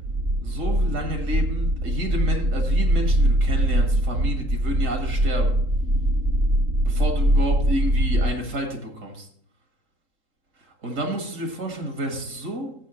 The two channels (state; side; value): late; left; 3.8 ms